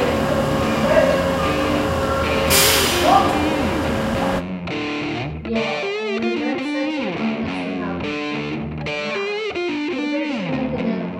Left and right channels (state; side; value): identical; both; correlation 1.00